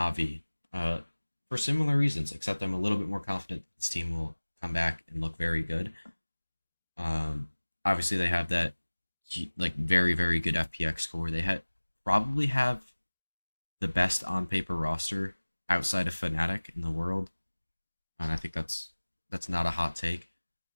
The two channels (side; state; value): both; inverted; correlation -1.00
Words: For similar reasons, except I'm a little bit more confident this team will come back and look very good. Obviously, they have that like very good FPX score. They probably have the best on paper roster outside of Fnatic in the world, and I think that's not a hot take.